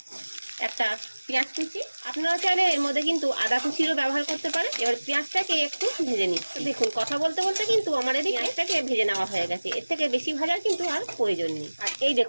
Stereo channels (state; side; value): inverted; both; correlation -1.00